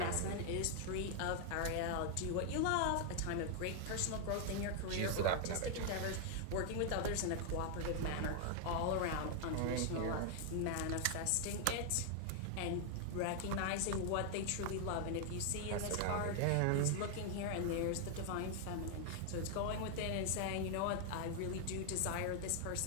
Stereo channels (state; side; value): different; both; correlation 0.00